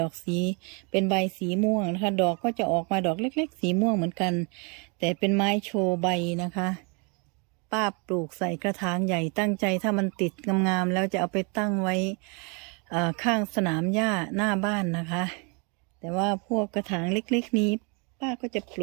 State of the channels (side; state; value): left; quieter; 33.7 dB